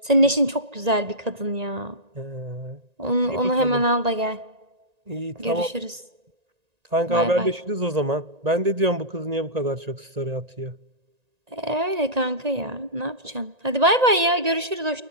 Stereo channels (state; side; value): late; left; 1.9 ms